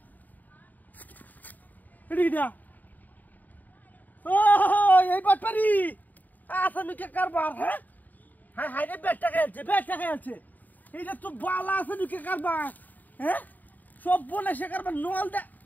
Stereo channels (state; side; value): late; right; 0.084 ms